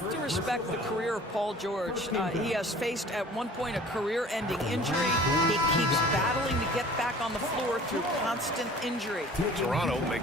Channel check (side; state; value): both; normal; correlation 0.47